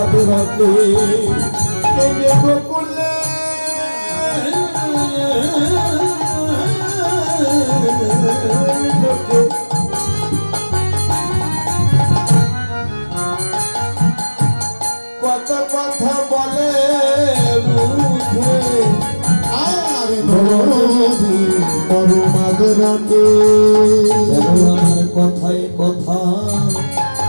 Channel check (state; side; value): inverted; both; correlation -1.00